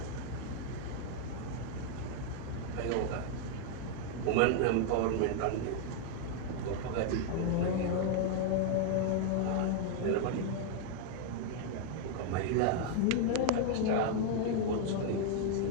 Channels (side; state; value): both; different; correlation 0.00